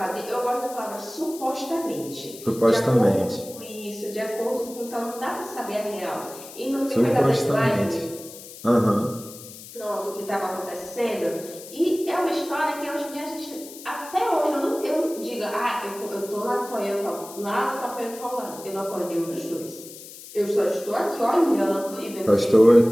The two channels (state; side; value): noise; left; hiss, 15 dB below the sound